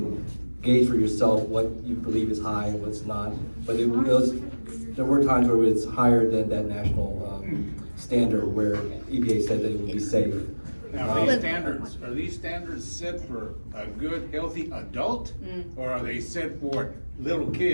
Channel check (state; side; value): inverted; both; correlation -1.00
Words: gauge for yourself what you believe is high and what's not. But there were times where it's higher than that national standard where EPA said that it would be safe. Now, are these standards set for a good, healthy adult? Or are they set for little